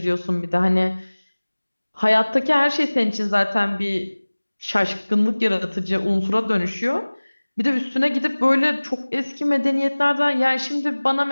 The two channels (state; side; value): inverted; both; correlation -1.00